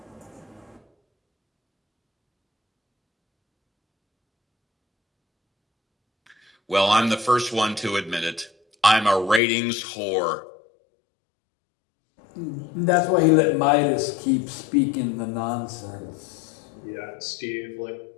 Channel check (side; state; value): right; drops out; at 9.4 s